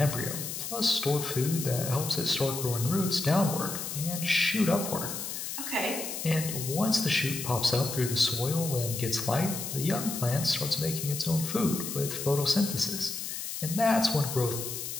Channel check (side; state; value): left; noise; hiss, 6 dB below the sound